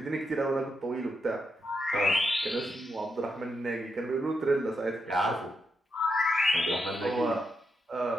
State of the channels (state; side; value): normal; both; correlation 0.84